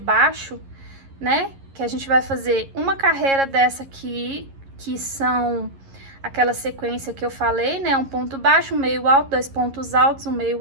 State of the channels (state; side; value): late; left; 11 ms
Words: né, que a gente vai fazer uma carreira dessa aqui, que são aquela sequência que eu falei, né, um ponto baixo, um meio alto, 2 pontos altos, um